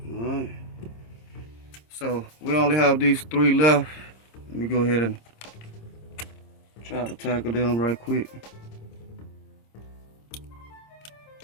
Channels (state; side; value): late; right; 26 ms